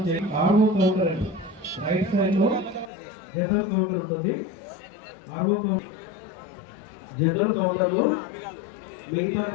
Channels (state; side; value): drops out; right; at 2.9 s